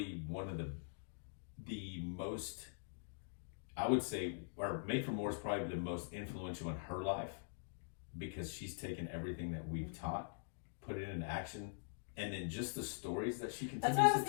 one of the most, I would say, or Made for More is probably the most influential in her life, because she's taken everything that we've taught, put it into action, and then just the stories that she That's continues what I was to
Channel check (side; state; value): right; silent; digital silence